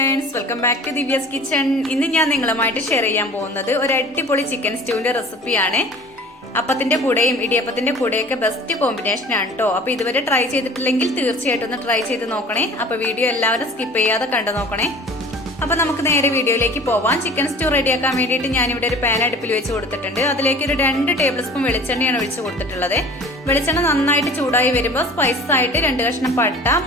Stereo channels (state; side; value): normal; both; correlation 0.44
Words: Friends, welcome back to Divya's kitchen. ഇന്ന് ഞാൻ നിങ്ങളുമായിട്ട് ഷെയർ ചെയ്യാൻ പോകുന്നത് ഒരു അടിപൊളി ചിക്കൻ സ്റ്റൂവിന്റെ റെസിപ്പിയാണ്. അപ്പത്തിന്റെ കൂടെയും ഇടിയപ്പത്തിന്റെ കൂടെയൊക്കെ ബെസ്റ്റ് കോമ്പിനേഷൻ ആണ് കേട്ടോ. അപ്പൊ ഇതുവരെ ട്രൈ ചെയ്തിട്ടില്ലെങ്കിൽ തീർച്ചയായിട്ടും ഒന്ന് ട്രൈ ചെയ്ത് നോക്കണേ. അപ്പൊ വീഡിയോ എല്ലാവരും സ്കിപ്പ് ചെയ്യാതെ കണ്ടു നോക്കണേ. അപ്പൊ നമുക്ക് നേരെ വീഡിയോയിലേക്ക് പോവാം. ചിക്കൻ സ്റ്റൂ റെഡിയാക്കാൻ വേണ്ടിയിട്ട് ഞാനിവിടെ ഒരു പാൻ അടുപ്പിൽ വെച്ച് കൊടുത്തിട്ടുണ്ട്. അതിലേക്ക് ഒരു 2 ടേബിൾ സ്പൂൺ വെളിച്ചെണ്ണയാണ് ഒഴിച്ച് കൊടുത്തിട്ടുള്ളത്. വെളിച്ചെണ്ണ നന്നായിട്ട് ചൂടായി വരുമ്പോൾ സ്പൈസസ് ആയിട്ട് 2 കഷ്ണം പട്ട,